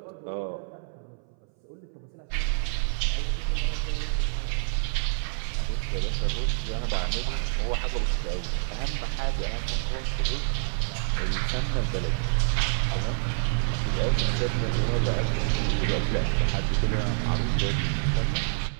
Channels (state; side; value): silent; left; 60 dB below the other